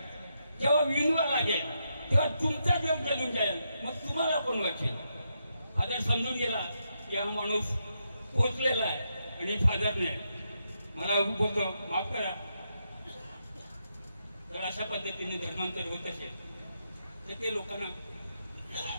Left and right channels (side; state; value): both; inverted; correlation -0.82